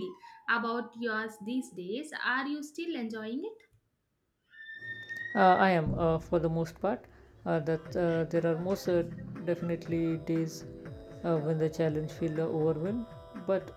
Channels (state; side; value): identical; both; correlation 1.00